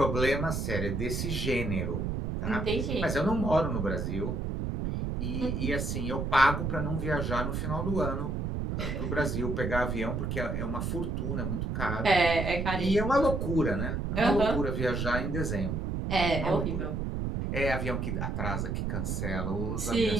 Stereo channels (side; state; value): right; noise; rumble, 1 dB below the sound